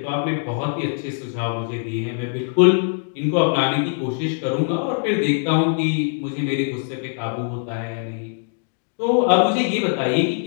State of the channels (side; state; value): right; silent; 64 dB below the other